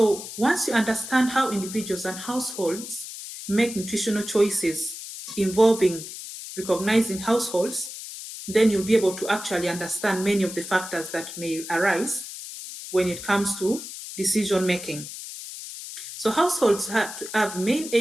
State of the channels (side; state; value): left; noise; hiss, 10 dB below the sound